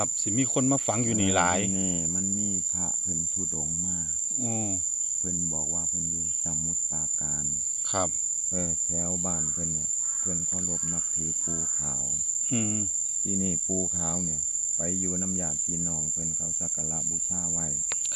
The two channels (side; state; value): both; normal; correlation 0.95